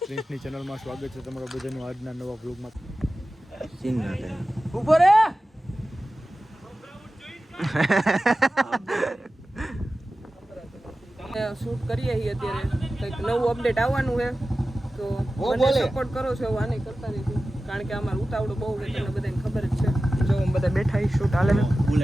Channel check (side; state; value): both; normal; correlation 0.95